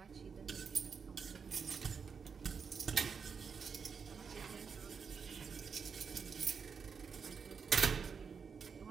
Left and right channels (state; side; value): quieter; left; 6.0 dB